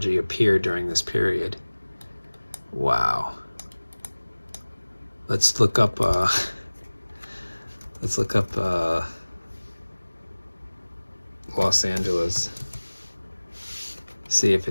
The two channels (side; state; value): both; inverted; correlation -1.00